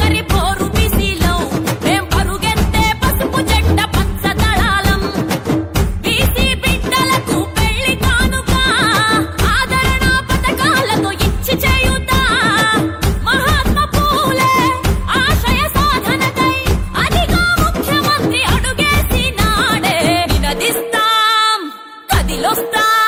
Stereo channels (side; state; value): both; identical; correlation 1.00